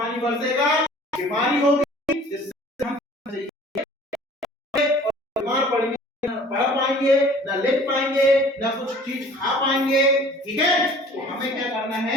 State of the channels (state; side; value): normal; both; correlation 0.49